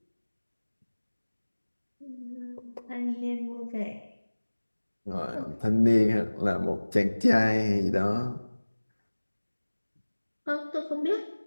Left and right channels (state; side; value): inverted; both; correlation -1.00